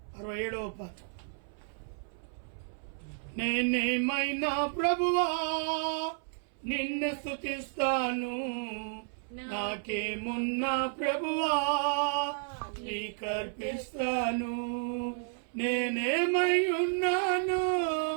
67వ పాట. నేనేమైనా ప్రభువా నిన్ను స్తుతిస్తాను, నాకేమున్నా ప్రభువా నీకర్పిస్తాను. నేనేమై ఉన్నాను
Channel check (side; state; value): left; silent; 56 dB below the other